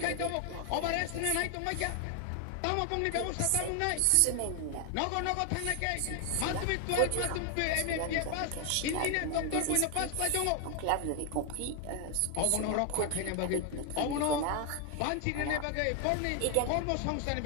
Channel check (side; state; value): both; different; correlation 0.00